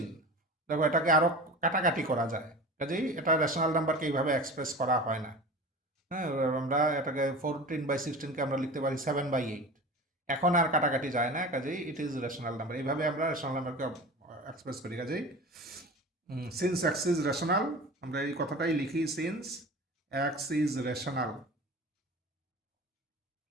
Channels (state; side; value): normal; both; correlation 0.35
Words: দেখো এটাকে আরও কাটাকাটি করা যায়, কাজেই এটা রেশনাল নাম্বারকে এইভাবে এক্সপ্রেস করা হয় না। হ্যাঁ, আমরা এটাকে 14/16কে আমরা লিখতে পারি 7/8, এখন আর কাটাকাটি যায় না, কাজেই ইট ইজ রেশনাল নাম্বার। এইভাবে আমরা রেশনাল নাম্বারকে এক্সপ্রেস করি। কাজেই সিন্স এক্স ইজ রেশনাল, আমরা এই কথাটাই লিখি, since x is rational.